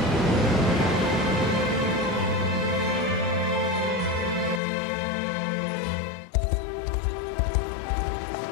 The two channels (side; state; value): right; drops out; at 4.6 s